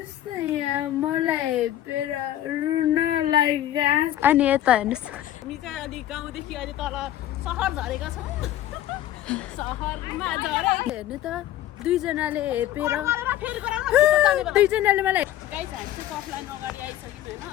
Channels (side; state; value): right; quieter; 12.7 dB